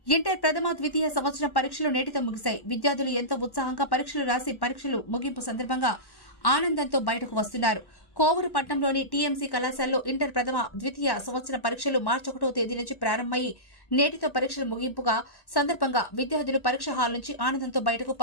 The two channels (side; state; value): right; late; 1.1 ms